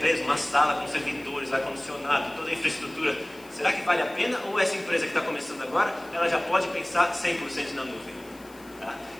uma sala com servidores, ar-condicionado, toda a infraestrutura? Será que vale a pena? Ou essa empresa que está começando agora, ela já pode pensar 100% na nuvem? Tá?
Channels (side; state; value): left; noise; hiss, 24 dB below the sound